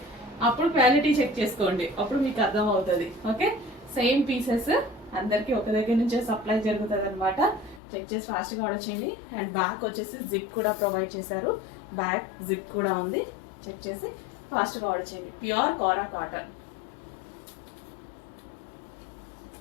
అప్పుడు క్వాలిటీ చెక్ చేసుకోండి, అప్పుడు మీకు అర్థం అవుతుంది. ఓకే, సేమ్ పీసెస్ అందరికి ఒక దగ్గర నుంచే సప్లై జరుగుతుంది అనమాట. చెక్ చేసి ఫాస్ట్గా ఆర్డర్ చేయండి. అండ్ బ్యాక్ వచ్చేసి జిప్ కూడా ప్రొవైడ్ చేశారు. బ్యాక్ జిప్ కూడా ఉంది. చెక్ చేసి ఫాస్ట్గా ఆర్డర్ చేయండి. ప్యూర్ కోరా కాటన్.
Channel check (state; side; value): drops out; right; at 7.8 s